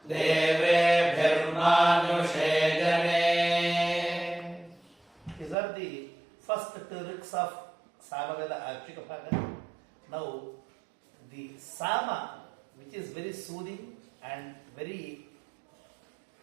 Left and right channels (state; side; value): drops out; left; at 5.6 s